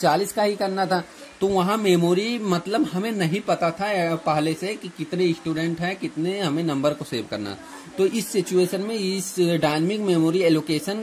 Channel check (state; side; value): identical; both; correlation 1.00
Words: 40 का ही करना था। तो वहाँ मेमोरी मतलब हमें नहीं पता था पहले से कि कितने स्टूडेंट हैं, कितने हमें नंबर को सेव करना। तो इस सिचुएशन में इस डायनेमिक मेमोरी